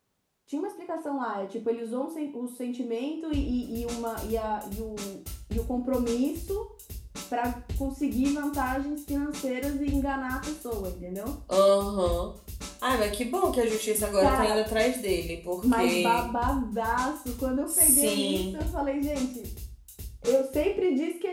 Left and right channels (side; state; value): both; identical; correlation 1.00